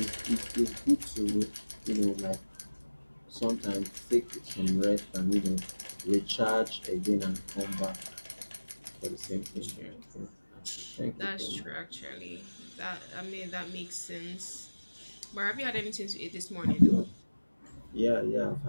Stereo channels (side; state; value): both; inverted; correlation -1.00